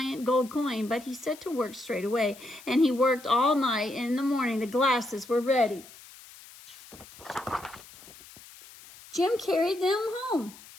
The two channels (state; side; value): noise; left; hiss, 20 dB below the sound